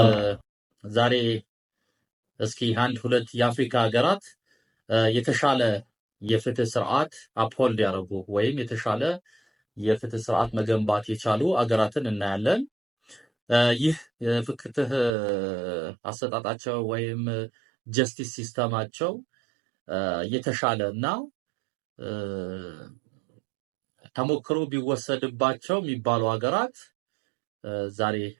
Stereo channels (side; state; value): left; drops out; at 15.1 s